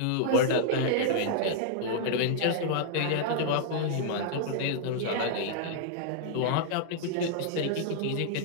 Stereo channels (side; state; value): both; different; correlation -0.01